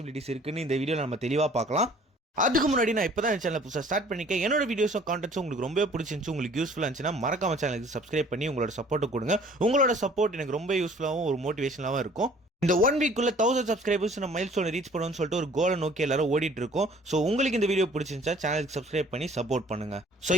இருக்குன்னு இந்த வீடியோவில் நம்ம தெளிவாக பார்க்கலாம். அதுக்கு முன்னாடி நான் இப்போ தான் சேனல் புதுசாக ஸ்டார்ட் பண்ணிக்கேன். என்னோட வீடியோஸும் கான்டென்ட்ஸும் உங்களுக்கு ரொம்ப பிடிச்சிருந்துச்சு, உங்களுக்கு யூஸ்ஃபுல்லாக இருந்துச்சுன்னா மறக்காம சேனலுக்கு சப்ஸ்கிரைப் பண்ணி உங்களோட சப்போர்ட்டை கொடுங்க. உங்களோட சப்போர்ட் எனக்கு ரொம்ப யூஸ்ஃபுல்லாகவும் ஒரு மோட்டிவேஷனாகவும் இருக்கும். இந்த 1 வீக்குள்ள 1000 சப்ஸ்கிரைபர்ஸ் நம்ம மைல்ஸ்டோன் ரீச் பண்ணணும்னு சொல்லிட்டு ஒரு கோலை நோக்கி எல்லாரும் ஓடிட்டு இருக்கோம். ஸோ உங்களுக்கு இந்த வீடியோ பிடிச்சிருந்துச்சா சேனலுக்கு சப்ஸ்கிரைப் பண்ணி சப்போர்ட் பண்ணுங்க. ஸோ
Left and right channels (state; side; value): normal; both; correlation 0.53